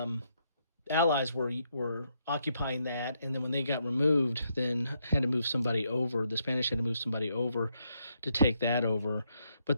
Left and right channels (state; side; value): inverted; both; correlation -0.77